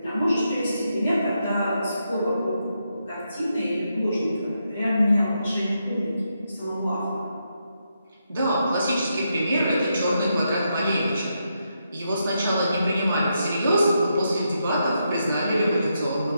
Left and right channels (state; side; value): inverted; both; correlation -0.82